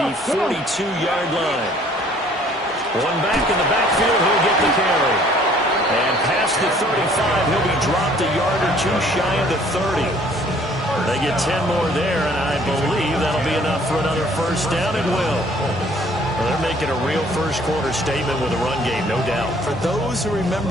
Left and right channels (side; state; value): both; normal; correlation 0.58